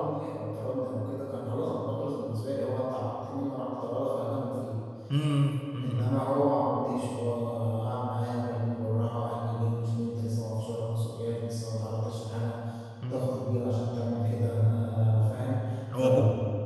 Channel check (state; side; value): identical; both; correlation 1.00